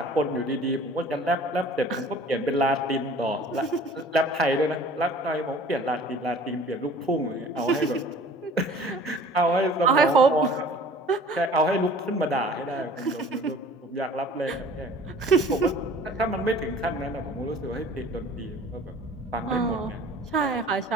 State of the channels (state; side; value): normal; both; correlation 0.48